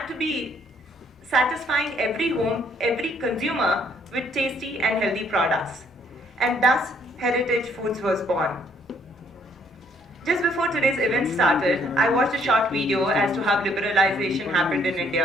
to be satisfying every home, every consumer with tasty and healthy products. And thus, Heritage Foods was born. Just before today's event started, I watched a short video as to how liberalization happened in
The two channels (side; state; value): both; normal; correlation 0.66